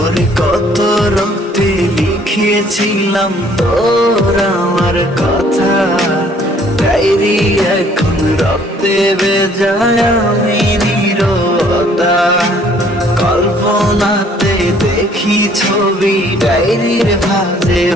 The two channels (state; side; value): normal; both; correlation 0.60